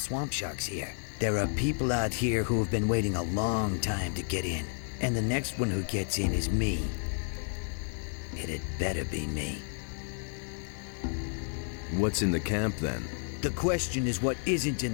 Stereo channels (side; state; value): right; silent; 57 dB below the other